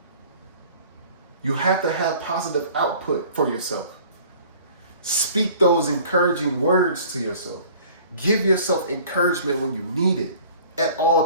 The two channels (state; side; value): inverted; both; correlation -0.49